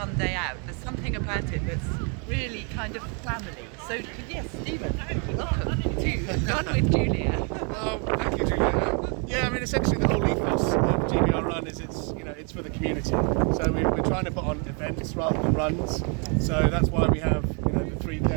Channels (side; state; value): left; quieter; 37.0 dB